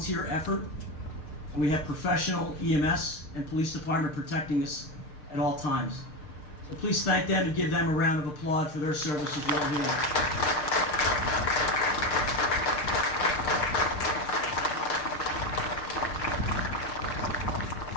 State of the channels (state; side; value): late; right; 6.6 ms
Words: effort. And we have professional EMS and police department protecting us at all times. So please thank them and give them a round of applause for their service as well here.